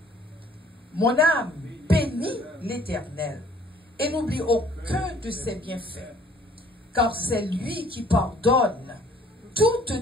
Mon âme bénit l'Éternel et n'oublie aucun de ses bienfaits. Car c'est lui qui pardonne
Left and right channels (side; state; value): both; normal; correlation 0.57